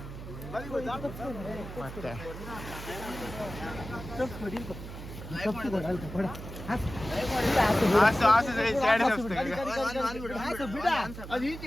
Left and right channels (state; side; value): noise; right; hum, 11 dB below the sound